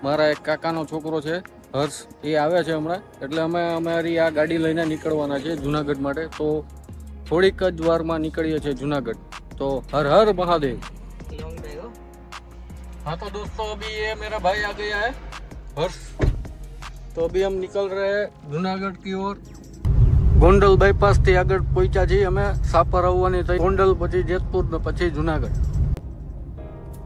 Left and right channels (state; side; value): identical; both; correlation 1.00